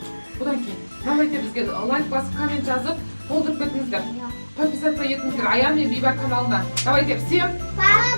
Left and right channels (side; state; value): both; inverted; correlation -1.00